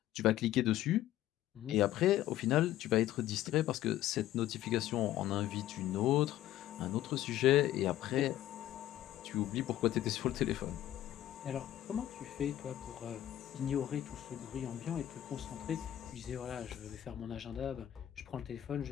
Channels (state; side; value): quieter; right; 13.1 dB